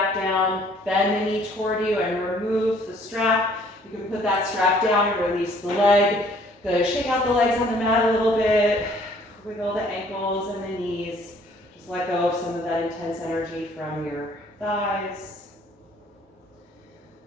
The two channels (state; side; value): normal; both; correlation 0.59